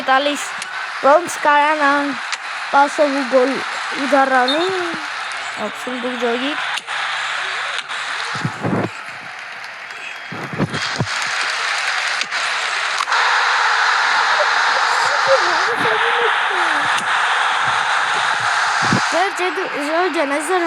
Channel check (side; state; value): both; identical; correlation 1.00